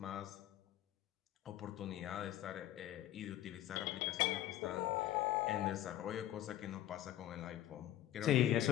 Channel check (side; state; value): right; quieter; 13.3 dB